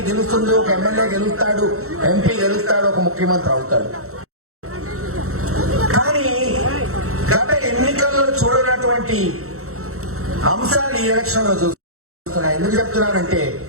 గెలుస్తుంది, ఒక ఎమ్మెల్యే గెలుస్తాడు, ఎంపీ గెలుస్తాడు, ఒక ముఖ్యమంత్రి అవుతాడు. కానీ గత ఎన్నికల్లో చూడనటువంటి అంశాలు ఈ ఎలక్షన్ లో చూస్తున్నా. ఎందుకు చెప్తున్నానంటే,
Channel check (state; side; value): late; left; 0.64 ms